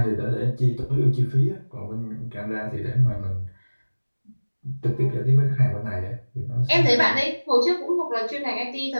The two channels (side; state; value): both; inverted; correlation -1.00